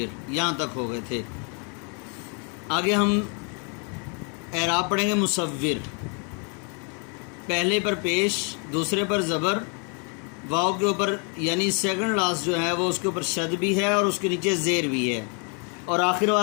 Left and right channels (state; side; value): quieter; right; 37.1 dB